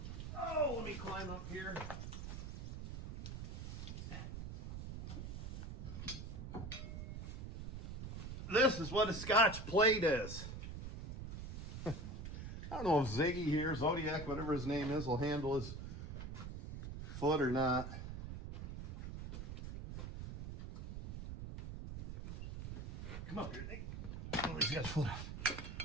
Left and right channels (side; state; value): right; noise; rumble, 7 dB below the sound